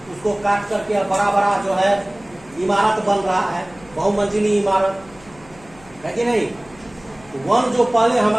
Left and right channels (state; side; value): noise; left; hum, 24 dB below the sound